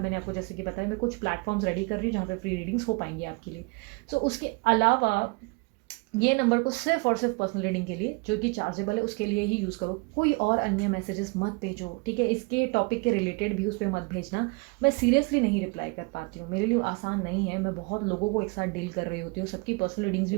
आपको जैसे कि बताया मैं कुछ प्लेटफॉर्म्स रेडी कर रही हूँ जहाँ पे फ्री रीडिंग्स हो पाएंगी आपके लिए। सो उसके अलावा ये नंबर को सिर्फ और सिर्फ पर्सनल रीडिंग के लिए जो कि चार्जेबल है उसके लिए ही यूज़ करो। कोई और अन्य मैसेजेस मत भेजो, ठीक है। इसके टॉपिक के रिलेटेड भी उस पर मत भेजना, मैं सीरियसली नहीं रिप्लाई कर पाती हूँ, मेरे लिए आसान नहीं है। मैं बहुत लोगों को एक साथ डील कर रही होती हूँ, सबकी पर्सनल रीडिंग्स भी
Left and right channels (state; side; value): quieter; left; 29.9 dB